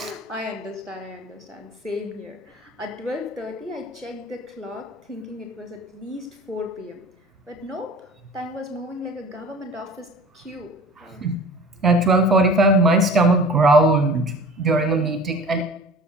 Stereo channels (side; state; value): both; normal; correlation 0.42